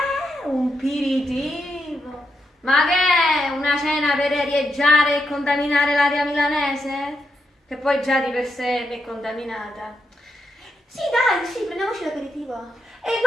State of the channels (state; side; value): normal; both; correlation 0.83